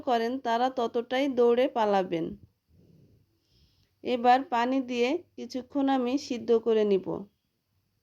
করেন তারা ততটাই দৌড়ে পালাবেন। এবার পানি দিয়ে কিছুক্ষণ আমি সিদ্ধ করে নিব।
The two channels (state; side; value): identical; both; correlation 1.00